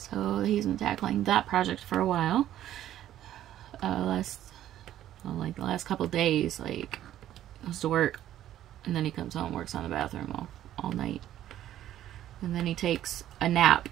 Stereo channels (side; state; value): left; quieter; 12.3 dB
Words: he's been tackling that project for a while. Like the last couple days, like, goes to work, and then he comes home and works on the bathroom all night. And then he takes a nap,